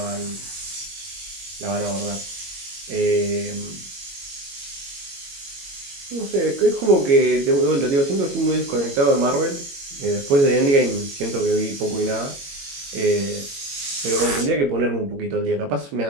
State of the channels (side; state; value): left; late; 21 ms